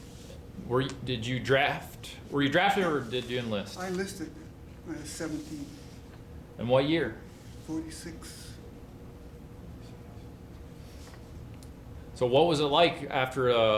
Were you drafted or did you enlist? I enlisted when I was 17, And what year? 46. So what was it like after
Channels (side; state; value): both; identical; correlation 1.00